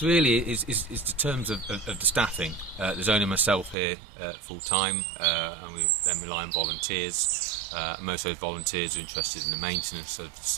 really is the terms of the staffing. There's only myself here full time, and we then rely on volunteers. Most of those volunteers are interested in the maintenance of the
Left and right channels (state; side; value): drops out; left; at 3.8 s